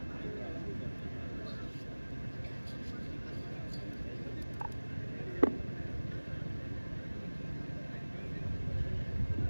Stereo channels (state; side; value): inverted; both; correlation -1.00